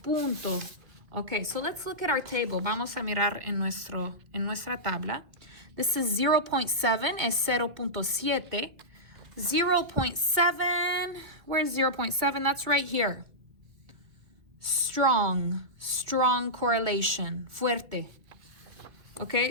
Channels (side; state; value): left; late; 2.1 ms